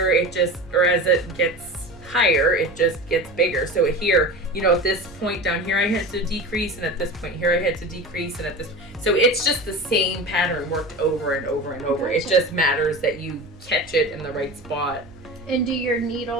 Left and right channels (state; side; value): normal; both; correlation 0.31